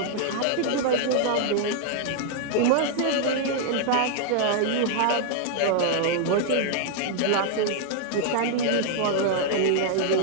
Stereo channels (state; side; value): different; both; correlation -0.01